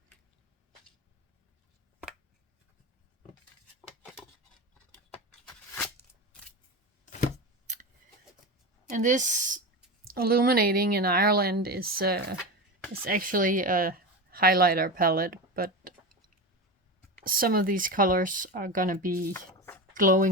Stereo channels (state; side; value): normal; both; correlation 0.23